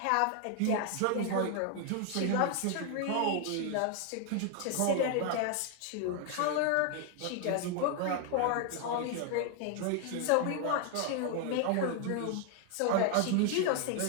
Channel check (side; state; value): both; different; correlation 0.00